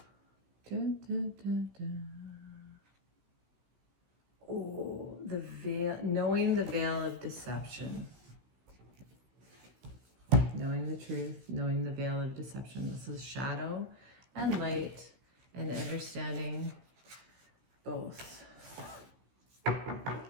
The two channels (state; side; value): late; left; 16 ms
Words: Dun, dun, dun, dun. Oh, the veil, knowing the veil of deception. Knowing the truth, knowing the veil of deception. This is shadow and light and understanding both.